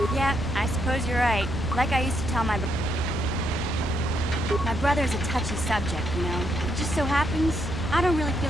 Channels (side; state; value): both; normal; correlation 0.76